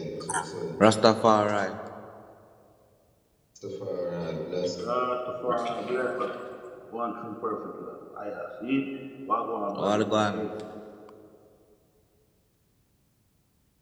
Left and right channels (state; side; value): identical; both; correlation 1.00